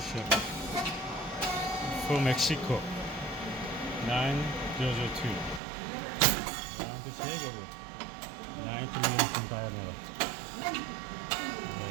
from Mexico 9002 round shape of it 90 mm diameter. Right.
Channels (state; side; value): drops out; left; at 5.6 s